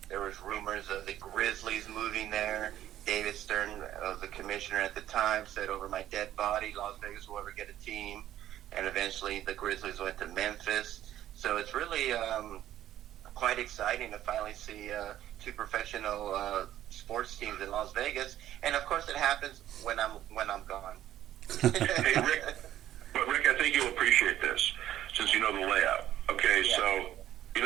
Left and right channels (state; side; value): quieter; left; 12.4 dB